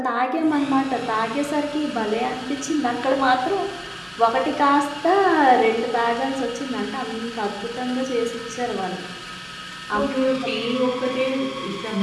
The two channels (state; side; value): identical; both; correlation 1.00